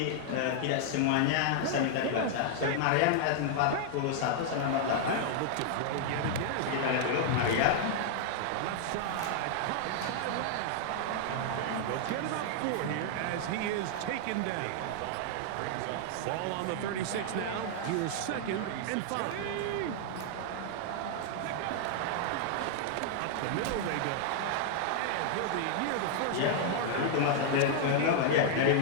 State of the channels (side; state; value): both; different; correlation 0.00